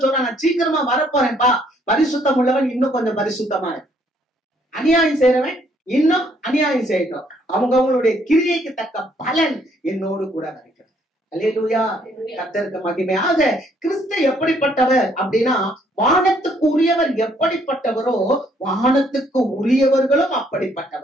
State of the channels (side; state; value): both; normal; correlation 0.67